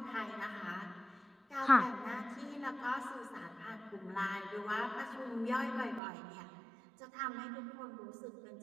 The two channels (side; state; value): left; drops out; at 6.0 s